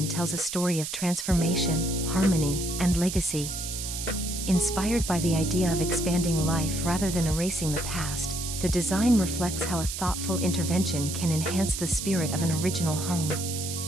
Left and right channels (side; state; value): right; noise; hiss, 6 dB below the sound